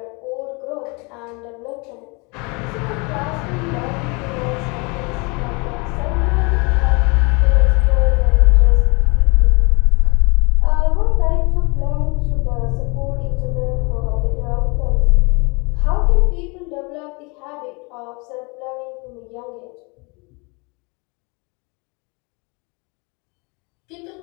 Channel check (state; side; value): quieter; right; 29.6 dB